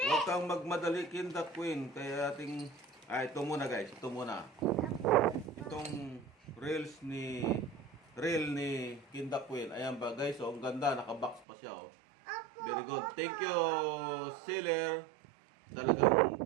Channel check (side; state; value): left; drops out; at 11.5 s